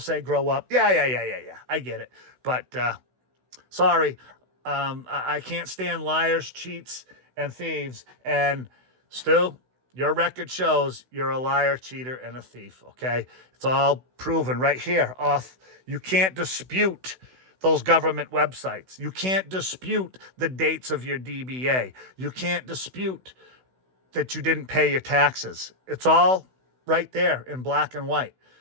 grow up. Yeah. I get it. But sorry, I can't stand liars, cheats, and thieves. And Stu, your record shows you're a liar, cheater, and a thief, okay? It's all proven right here. You can't dispute those government websites. You can't dispute the dates of your DBA. You can't dispute that you didn't pay your taxes. It's all right there in black and white.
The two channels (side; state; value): left; late; 16 ms